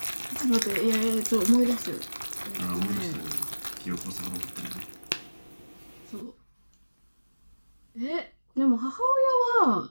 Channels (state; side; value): inverted; both; correlation -1.00